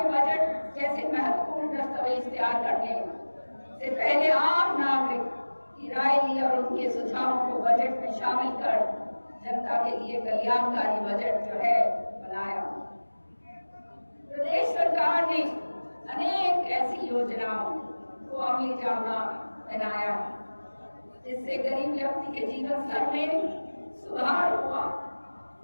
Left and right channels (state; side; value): inverted; both; correlation -1.00